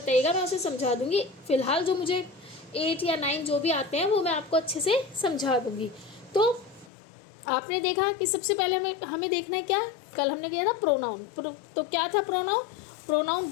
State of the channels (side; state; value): right; drops out; at 6.9 s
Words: मैं उसे समझा दूंगी। फिलहाल जो मुझे 8 या 9 जो भी आते हैं वो मैं आपको अच्छे से समझा दूंगी। तो आपने देखा कि सबसे पहले हमें देखना है क्या? कल हमने किया था प्रोनाउन। तो क्या था प्रोनाउन? प्रोनाउन